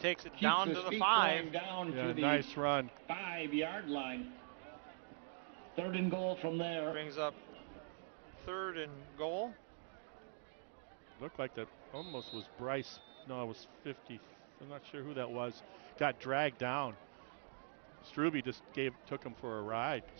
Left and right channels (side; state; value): left; silent; digital silence